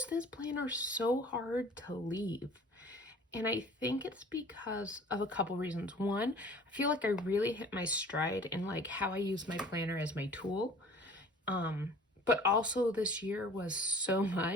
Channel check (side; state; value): both; normal; correlation 0.47